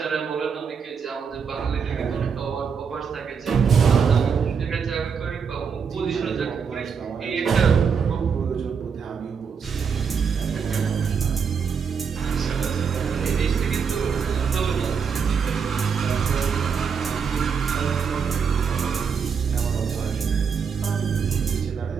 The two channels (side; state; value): left; quieter; 6.4 dB